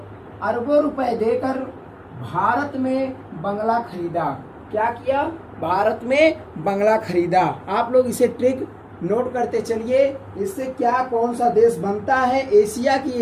अरबों रुपए देकर भारत में बंगला खरीदा। क्या किया, भारत में बंगला खरीदा। आप लोग इसे ट्रिक नोट करते चलिए। इससे क्या कौन सा देश बनता है, एशिया की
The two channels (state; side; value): identical; both; correlation 1.00